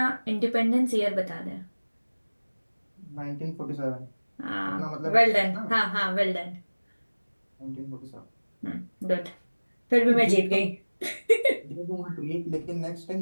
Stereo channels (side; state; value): both; inverted; correlation -1.00